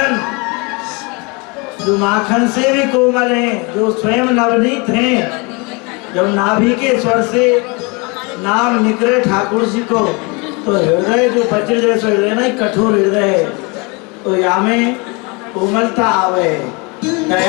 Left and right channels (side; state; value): right; quieter; 29.3 dB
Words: जो माखन से भी कोमल हैं, जो स्वयं नवनीत हैं। जब नाभि के स्वर से नाम निकले ठाकुर जी को, तो हृदय जो वज्र जैसा हृदय ना, कठोर हृदय है, तो यहाँ में कोमलता आवे,